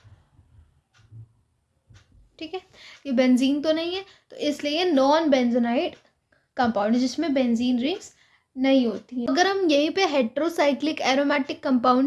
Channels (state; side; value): identical; both; correlation 1.00